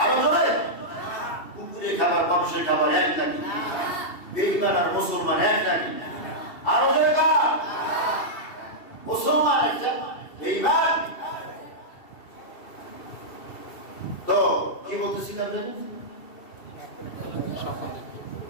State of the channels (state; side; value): late; right; 2.7 ms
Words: আরো জোরে, কুকুরের খাবার মানুষের খাবার এক নাকি? বেঈমান আর মুসলমান এক নাকি? আরো জোরে কাজ, মুসলমান একটা, বেঈমান। তো কি বলতেছিলাম জানেন?